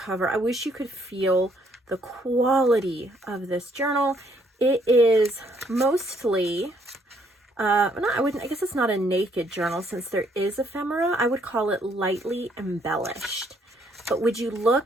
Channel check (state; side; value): normal; both; correlation 0.68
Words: I wish you could feel the quality of this journal. It is mostly... I guess it's not a naked journal since there is ephemera. I would call it lightly embellished. But would you